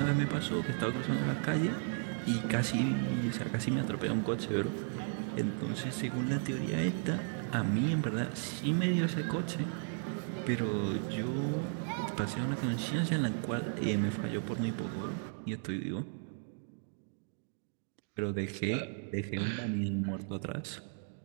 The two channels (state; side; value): silent; left; 55 dB below the other